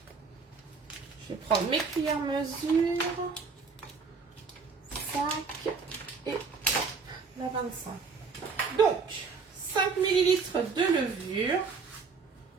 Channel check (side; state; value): left; quieter; 5.0 dB